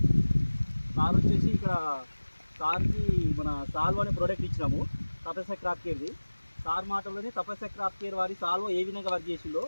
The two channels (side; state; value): both; inverted; correlation -1.00